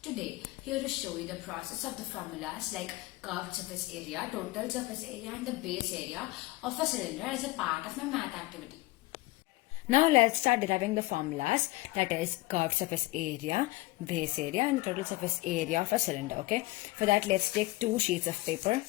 Today, here to show you the process of the formulas like curved surface area, total surface area and the base area of a cylinder as a part of my math activity. Now let's start deriving the formulas, that is curved surface area, base area and total surface area of a cylinder. Okay, for that let's take two sheets of paper,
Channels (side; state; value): right; quieter; 20.4 dB